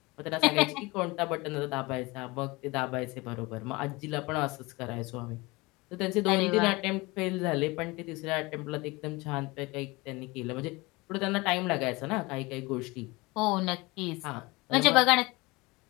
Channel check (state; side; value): quieter; right; 23.5 dB